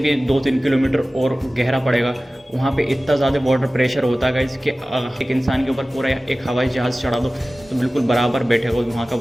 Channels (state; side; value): normal; both; correlation 0.97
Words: 2-3 किलोमीटर और गहरा पड़ेगा। वहाँ पे इतना ज़्यादा वाटर प्रेशर होता है कि एक इंसान के ऊपर पूरा एक हवाई जहाज़ चढ़ा दो तो बिल्कुल बराबर बैठेगा वहाँ का